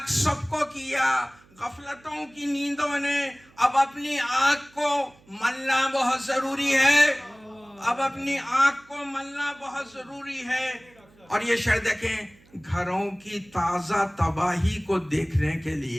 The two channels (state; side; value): noise; right; hum, 29 dB below the sound